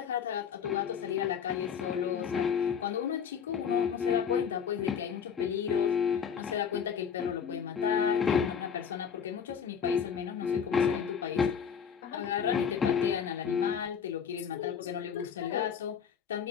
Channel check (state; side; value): quieter; right; 7.2 dB